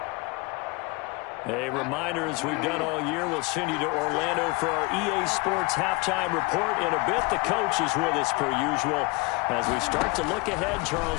A reminder, as we've done all year, we'll send you to Orlando for our EA Sports halftime report in a bit. The coach is with us per usual as we start to look ahead,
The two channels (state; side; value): quieter; right; 25.8 dB